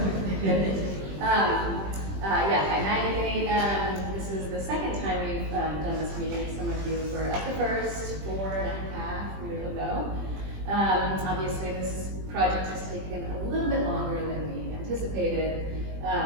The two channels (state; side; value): late; left; 20 ms